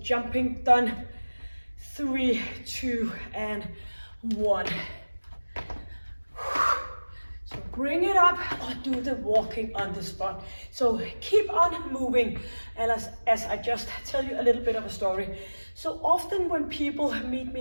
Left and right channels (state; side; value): inverted; both; correlation -1.00